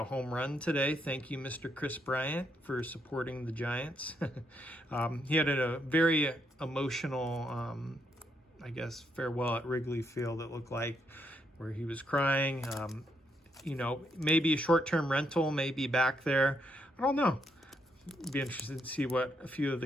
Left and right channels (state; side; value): normal; both; correlation 0.77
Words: home run today. Thank you, Mr. Kris Bryant, for supporting the Giants. He had a very emotional, I guess, farewell at Wrigley Field, it looked like, where he was crying. Maybe a short-term rental, maybe back there. I don't know. Be interested to see what a few of the